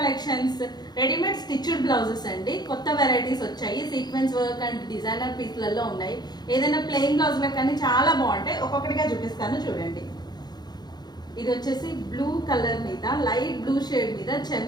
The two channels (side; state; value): right; late; 0.20 ms